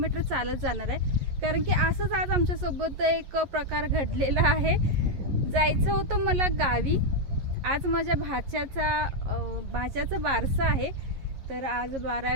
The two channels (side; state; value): left; late; 11 ms